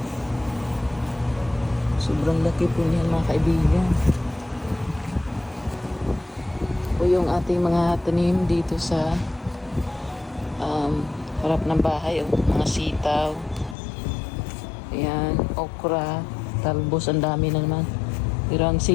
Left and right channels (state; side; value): drops out; right; at 13.8 s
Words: Sobrang laki po niyan mga kaibigan. O yung ating mga tanim dito sa harap ng bahay. Mga sitaw. Ayan. Okra. Talbos. Ang dami na naman. Pero ang